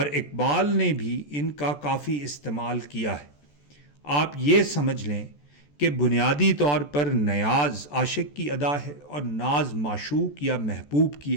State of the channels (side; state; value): right; late; 14 ms